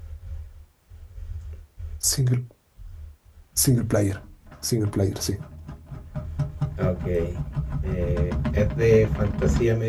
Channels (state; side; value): identical; both; correlation 1.00